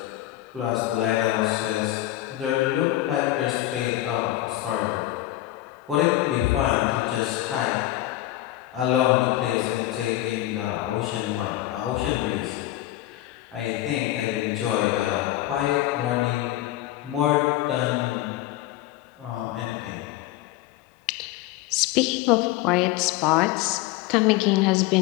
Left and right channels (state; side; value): quieter; right; 15.3 dB